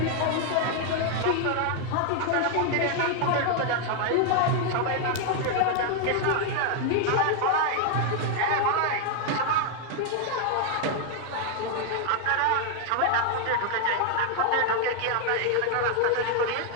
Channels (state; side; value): different; both; correlation 0.00